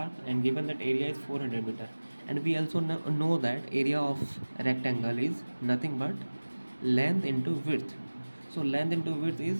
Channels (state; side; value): inverted; both; correlation -1.00